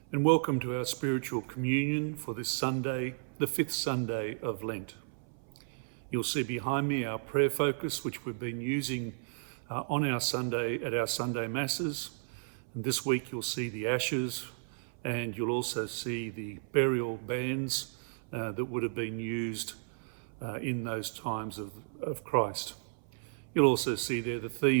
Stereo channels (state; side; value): silent; left; 55 dB below the other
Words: and welcome to our spiritual communion for this Sunday, the fifth Sunday of Lent. You'll see behind me our prayer focus, which we've been using on our Sunday at our Sunday Masses. And this week you'll see the ashes, and you'll also see the burial bands that would have been used in those times of Christ. You'll also see there the